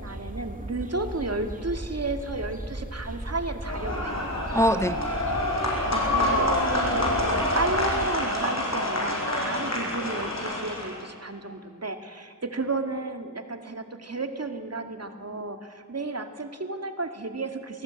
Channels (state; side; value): normal; both; correlation 0.06